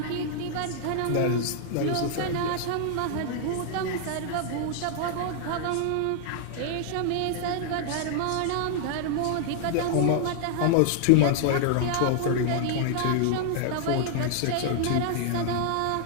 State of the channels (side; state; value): both; different; correlation 0.00